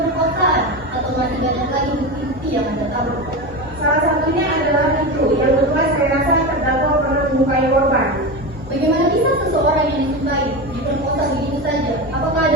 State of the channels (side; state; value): both; normal; correlation 0.21